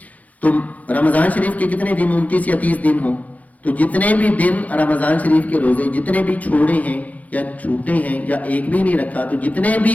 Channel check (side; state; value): right; late; 0.074 ms